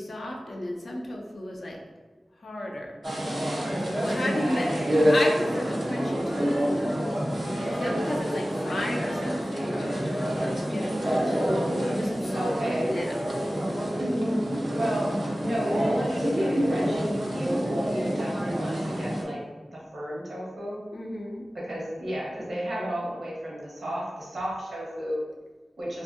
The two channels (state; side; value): normal; both; correlation 0.96